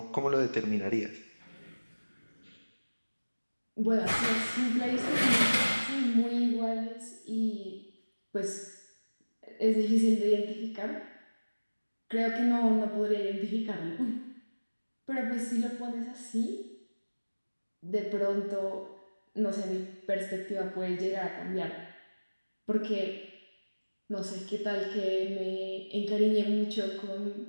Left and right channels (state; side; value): inverted; both; correlation -1.00